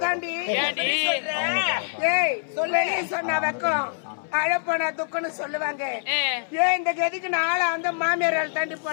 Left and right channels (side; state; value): right; silent; 61 dB below the other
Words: தாண்டி. ஏய் சொல்லி சொன்ன வெக்கம் அழப்போனா துக்கன்னு சொல்லுவாங்க. ஏன் இந்த கதிக்கு நாளை அந்த மாமியார் தாண்டி